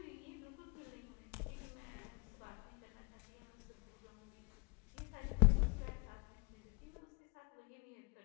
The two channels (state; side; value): quieter; right; 30.9 dB